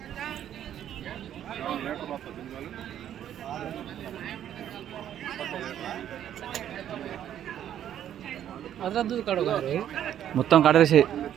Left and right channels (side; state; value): left; quieter; 10.5 dB